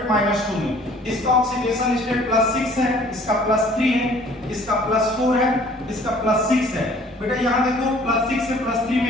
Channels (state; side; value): normal; both; correlation 0.54